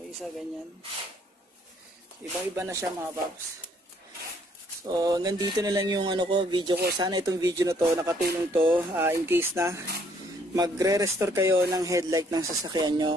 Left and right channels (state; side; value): normal; both; correlation 0.65